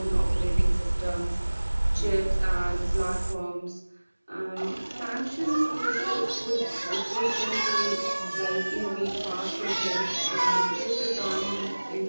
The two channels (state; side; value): inverted; both; correlation -1.00